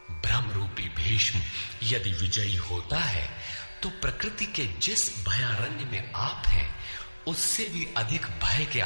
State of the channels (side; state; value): both; inverted; correlation -1.00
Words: ब्रह्म रूपी भीष्म यदि विजयी होता है तो प्रकृति के जिस भयारण्य में आप हैं, उससे भी अधिक भय के